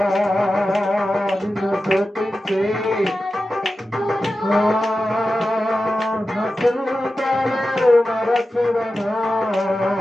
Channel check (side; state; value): both; normal; correlation 0.93